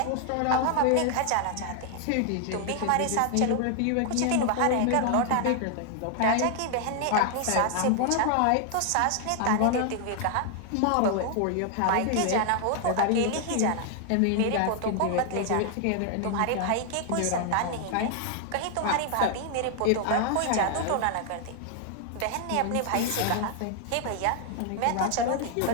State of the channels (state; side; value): different; both; correlation 0.00